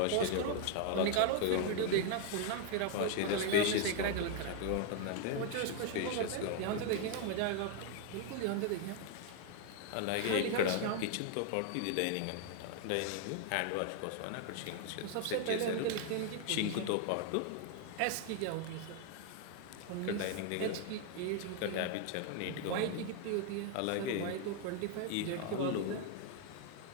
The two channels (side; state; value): both; different; correlation 0.00